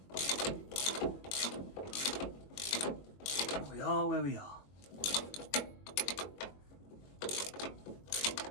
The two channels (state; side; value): late; right; 21 ms